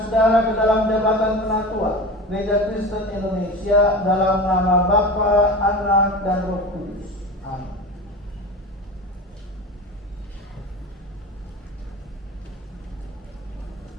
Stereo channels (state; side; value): normal; both; correlation 0.30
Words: saudara ke dalam jabatan penatua Gereja Kristen Indonesia dalam nama Bapa, Anak, dan Roh Kudus. Amin.